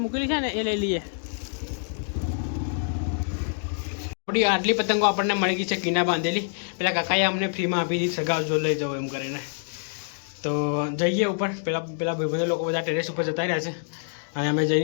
મૂકેલી છે ને એ લઈ લઈએ. આપણી આટલી પતંગો આપણને મળી ગઈ છે કિના બાંધેલી. પેલા કાકાએ અમને ફ્રીમાં આપી દીધી, સગાવજો લઈ જાઓ એમ કરીને. તો જઈએ ઉપર. પેલા ભાઈબંધો લોકો બધા ટેરેસ ઉપર જતા રહ્યા છે અને અમે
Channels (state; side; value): silent; right; digital silence